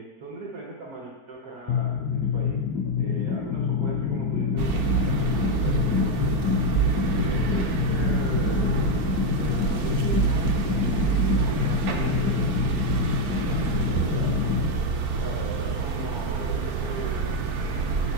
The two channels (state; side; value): late; left; 4.4 ms